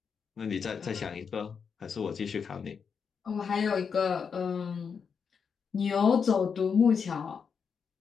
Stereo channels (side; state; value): right; quieter; 6.3 dB